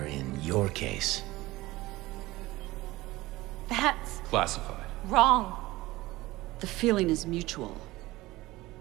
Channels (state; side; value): quieter; left; 18.9 dB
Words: in your case... That's Classified. wrong. The feeling is mutual.